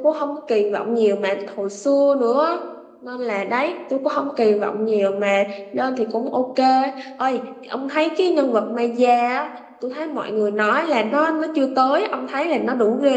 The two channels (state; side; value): identical; both; correlation 1.00